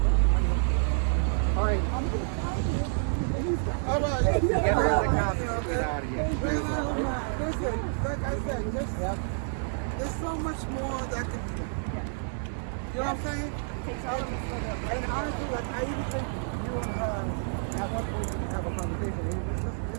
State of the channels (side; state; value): left; silent; 59 dB below the other